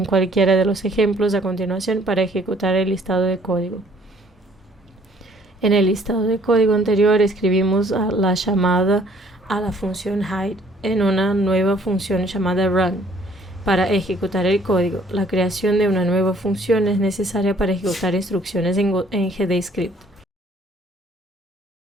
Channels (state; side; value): normal; both; correlation 0.60